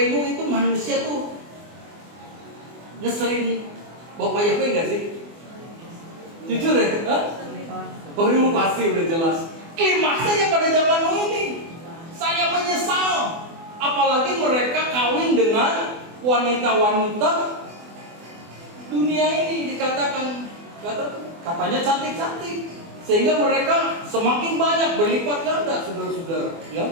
Nuh itu manusia tuh ngeselin Bapak Yahweh nggak sih? Jujur ya? Baru pasti udah jelas. Klimaksnya pada zaman Nuh ini, saya menyesal. Apalagi mereka kawin dengan wanita-wanita dunia ini dikatakan katanya cantik-cantik, sehingga mereka semakin banyak berlipat ganda, saudara-saudara.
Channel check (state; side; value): late; left; 24 ms